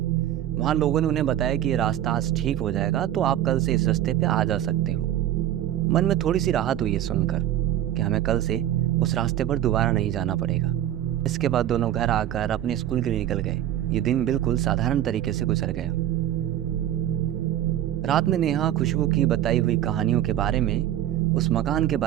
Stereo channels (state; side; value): quieter; left; 12.1 dB